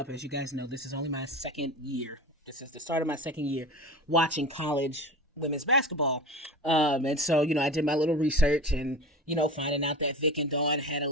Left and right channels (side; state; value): both; normal; correlation 0.33